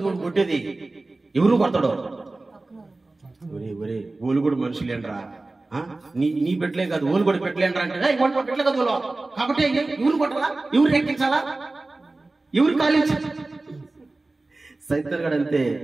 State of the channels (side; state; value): left; quieter; 3.2 dB